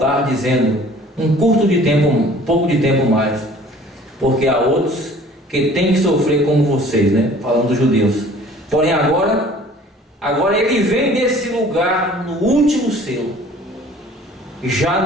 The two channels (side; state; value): both; normal; correlation 0.50